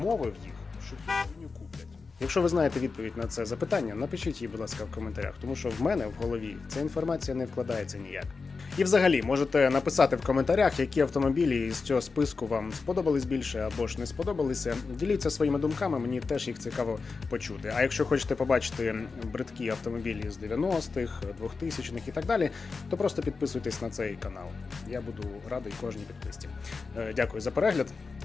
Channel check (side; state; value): right; quieter; 4.5 dB